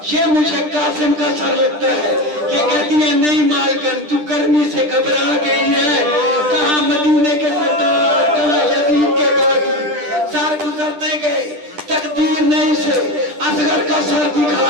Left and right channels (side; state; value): left; late; 10 ms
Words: ये मुझे कासिम का सर लगता है। ये कहती है, नहीं मालकन, तू गर्मी से घबरा गई है, कहाँ मदीने के सरदार, कहाँ यजीद के बागी। सर गुजरते गए, तकदीर ने इसे असगर का सर